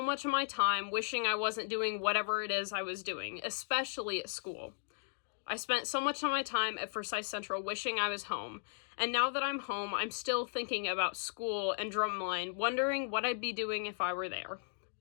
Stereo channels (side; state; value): right; silent; digital silence